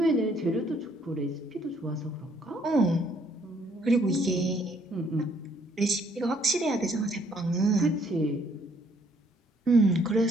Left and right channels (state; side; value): normal; both; correlation 0.65